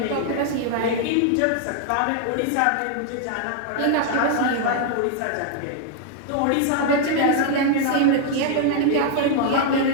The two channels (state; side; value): different; both; correlation 0.00